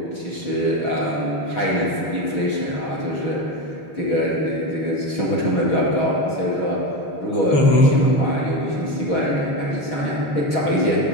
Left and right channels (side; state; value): right; late; 6.5 ms